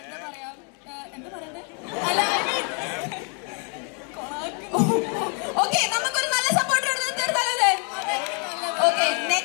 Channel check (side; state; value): right; quieter; 38.6 dB